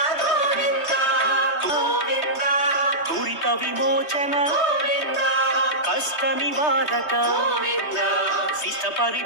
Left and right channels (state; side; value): late; right; 3.2 ms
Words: దురిత విమోచన కష్ట నివారక శిష్ట